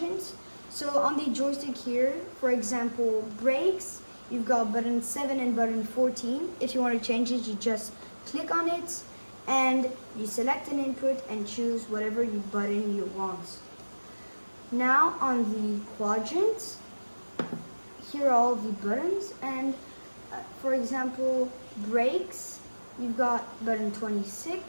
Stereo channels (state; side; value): inverted; both; correlation -1.00